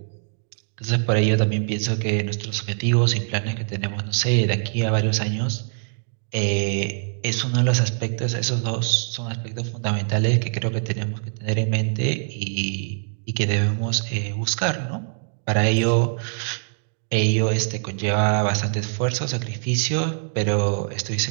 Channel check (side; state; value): left; silent; digital silence